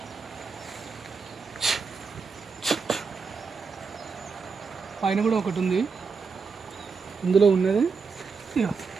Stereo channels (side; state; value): left; quieter; 5.1 dB